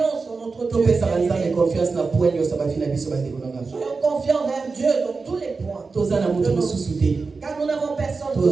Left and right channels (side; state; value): left; quieter; 4.3 dB